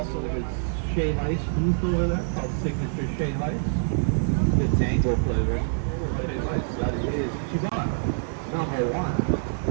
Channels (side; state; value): left; silent; 61 dB below the other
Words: his Shea Ice booth over there, called Signature Shea Ice. The tango flavor. Shea Ice, that is Ichiban, number one.